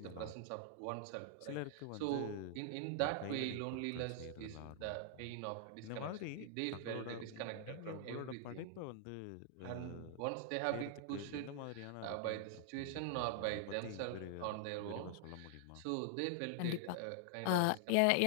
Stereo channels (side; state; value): both; different; correlation 0.00